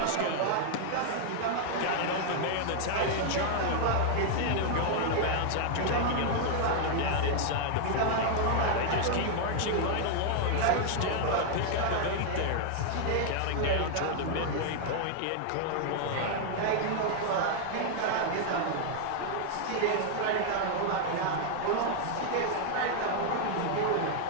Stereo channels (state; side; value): different; both; correlation 0.00